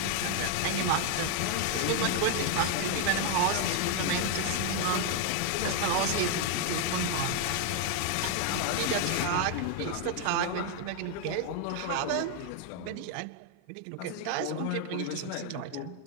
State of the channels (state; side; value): different; both; correlation 0.00